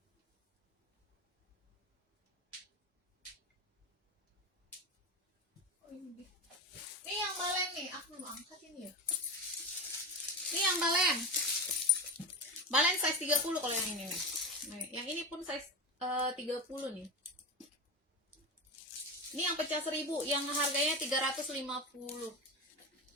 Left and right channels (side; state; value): both; normal; correlation 0.20